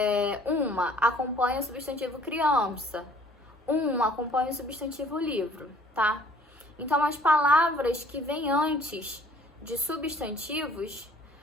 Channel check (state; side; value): normal; both; correlation 0.56